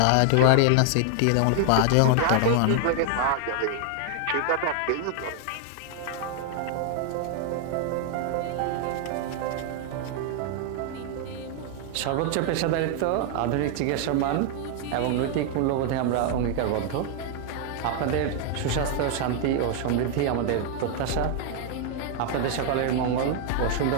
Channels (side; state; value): both; different; correlation 0.00